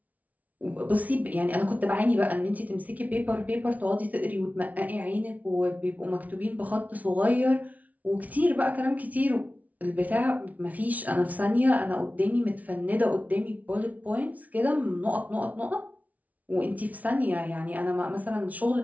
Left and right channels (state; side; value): late; left; 0.072 ms